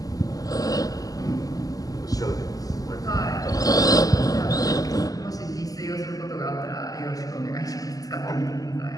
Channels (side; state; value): right; late; 0.17 ms